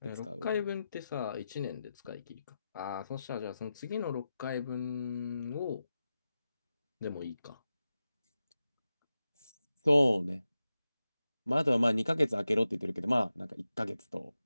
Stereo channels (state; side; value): inverted; both; correlation -0.92